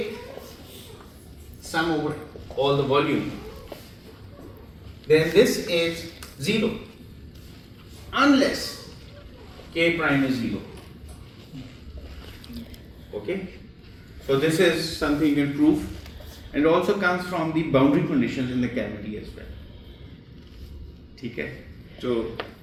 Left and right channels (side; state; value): both; identical; correlation 1.00